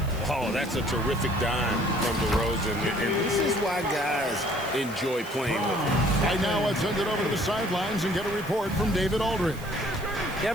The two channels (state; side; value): noise; right; hiss, 19 dB below the sound